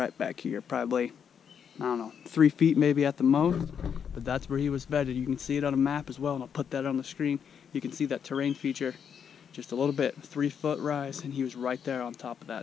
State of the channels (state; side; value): quieter; right; 7.6 dB